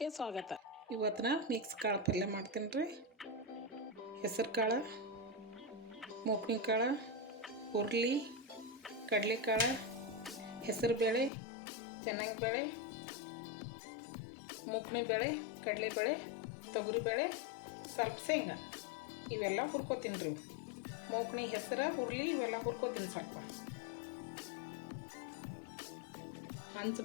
ಸ್ವಾಗತ. ಇವತ್ತಿನ ಮಿಕ್ಸ್ ಕಾಳು ಪಲ್ಯ ಮಾಡ್ತೀನಿ ರೀ. ಹೆಸರು ಕಾಳು, ಮೂಕ್ನಿ ಕಾಳು, ಹುರ್ಲಿ, ಕಡಲೆಕಾಳು, ಹೆಸರು ಬೇಳೆ, ಚೆನ್ನಾಗಿ ಬೇಳೆ, ಮೂಕ್ನಿ ಬೇಳೆ, ಕಡಲೆಬೇಳೆ, ತೊಗರಿಬೇಳೆ, ಸ್ವಲ್ಪ ಶೇಂಗಾ ಇವೆಲ್ಲ ಹುರ್ಕೋತೀನಿ ರೀ. ಮೂಕ್ನಿ, ಹೆಸರು, ಹುರ್ಲಿ ಇವೆಲ್ಲ ಹುರ್ಕೋತೀನಿ. ಸ್ವಲ್ಪ ಹಂಚು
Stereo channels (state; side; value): drops out; right; at 11.3 s